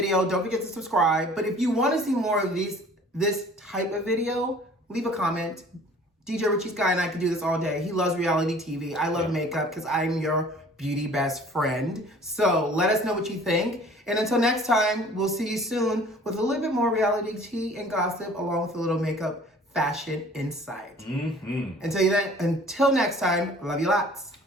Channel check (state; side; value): normal; both; correlation 0.50